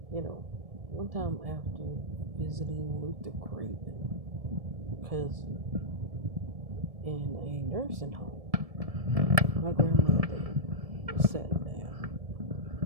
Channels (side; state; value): left; late; 1.7 ms